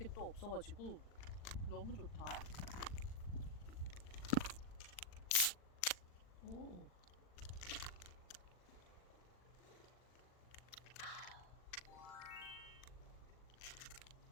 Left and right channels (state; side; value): late; right; 40 ms